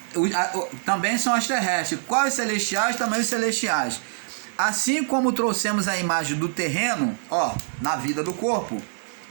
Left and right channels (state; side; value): silent; left; digital silence